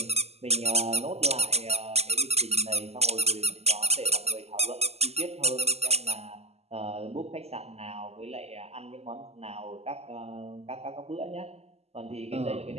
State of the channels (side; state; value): left; late; 0.30 ms